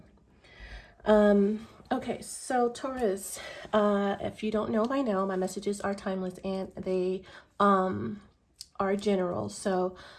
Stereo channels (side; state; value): both; identical; correlation 1.00